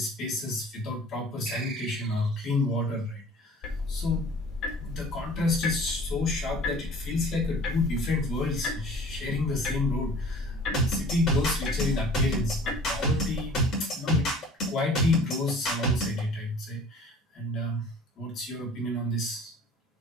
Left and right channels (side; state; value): both; normal; correlation 0.48